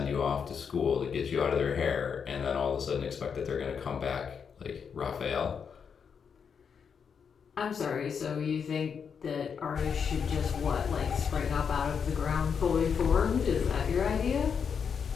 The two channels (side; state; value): right; quieter; 6.7 dB